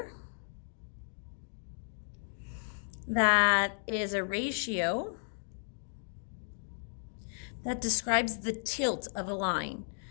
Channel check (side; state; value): right; silent; digital silence